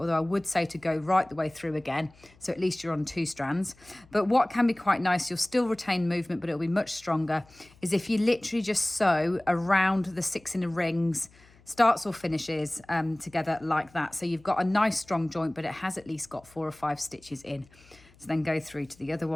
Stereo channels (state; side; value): noise; left; hum, 27 dB below the sound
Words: I would say to go right the way through again, so at least you're on 2 strands. But what can be quite nice, you'll still retain movement, but it'll be much stronger, is if you literally just sew around the 6 inner rings, starts or finishes together like that. So you've got a nice strong joint, but it has at least got 4 or 5 stitches in. So then go through to the other